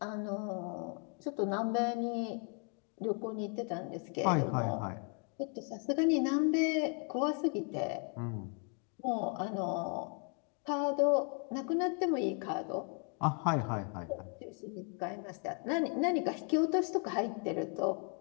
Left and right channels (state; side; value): quieter; right; 39.5 dB